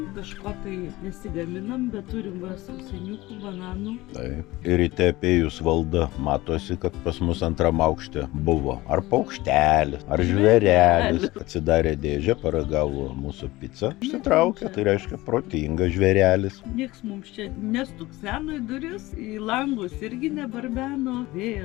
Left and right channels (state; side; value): quieter; right; 19.2 dB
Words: kažko tai nesigaminam, bet turim va sausainiukų, bananų. Taip. Ir ryte apėjus valdą matosi, kad pas mus antram aukšte buvo ar paukštelis, ar žvėrelis. Atsidarė dėžę, paragavo mūsų pizzą. Išsitraukė, tai reiškia protingas žvėrelis. Nieks mums čia nestukseno į duris, į langus irgi nebarbeno,